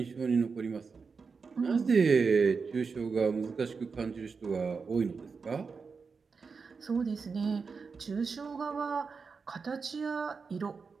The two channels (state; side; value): quieter; left; 5.1 dB